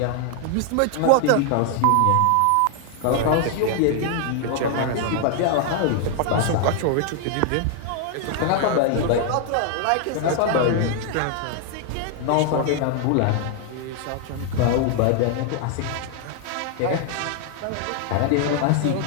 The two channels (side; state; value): both; different; correlation 0.00